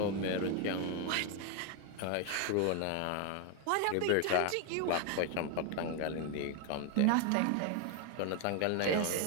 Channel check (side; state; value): both; different; correlation 0.01